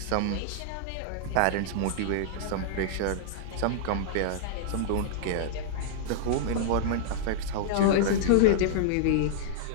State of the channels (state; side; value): different; both; correlation -0.02